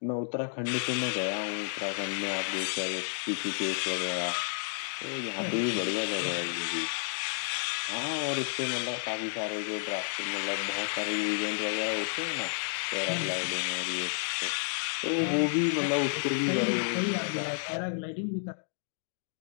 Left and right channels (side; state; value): right; silent; digital silence